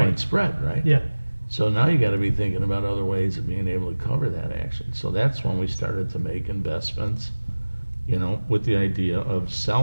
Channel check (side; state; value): both; inverted; correlation -1.00